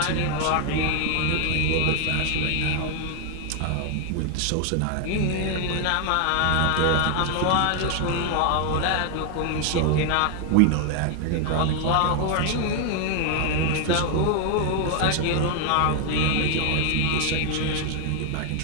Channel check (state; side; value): different; both; correlation 0.00